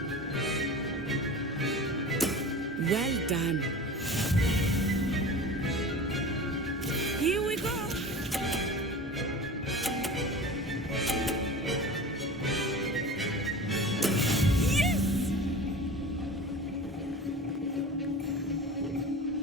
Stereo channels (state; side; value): normal; both; correlation 0.35